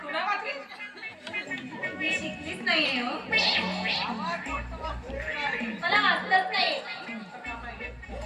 तू नाही वाचली? मी शिकलीच नाहीये हो. मला वाचलंच नाही.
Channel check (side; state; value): both; identical; correlation 1.00